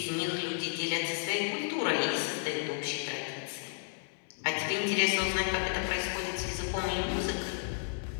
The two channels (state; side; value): silent; right; 56 dB below the other